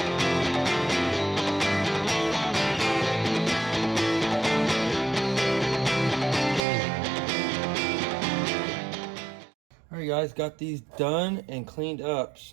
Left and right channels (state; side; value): drops out; left; at 6.6 s